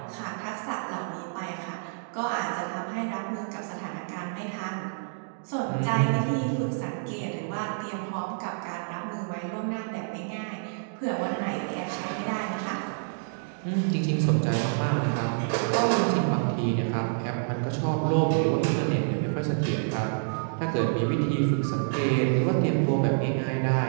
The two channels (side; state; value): left; silent; digital silence